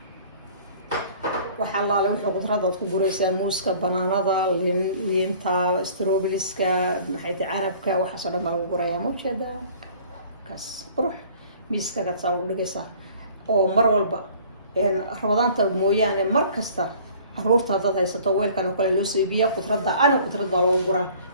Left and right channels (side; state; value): both; inverted; correlation -0.51